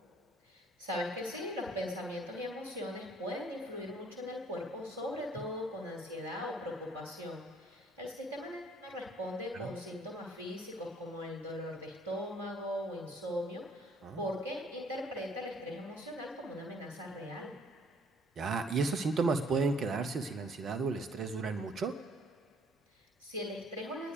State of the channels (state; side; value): normal; both; correlation 0.60